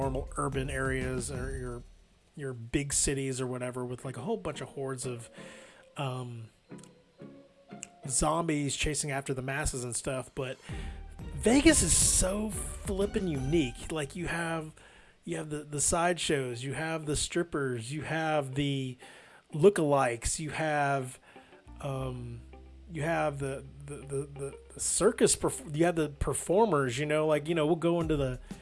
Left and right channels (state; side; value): identical; both; correlation 1.00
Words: urban areas or your big cities or whatever, with, like, a whole bunch of hordes of zombies chasing after the masses and stuff. But Vegas is so flippin' unique. Like, you have the sideshows, you have the strippers, you have the lookalikes, you have the circus, you have the performers, you know, like, you know, we'll go into the